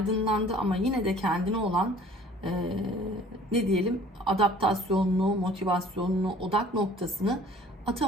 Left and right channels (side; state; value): both; normal; correlation 0.51